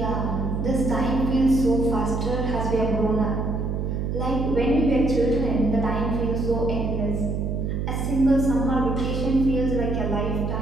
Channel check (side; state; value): right; noise; hum, 1 dB below the sound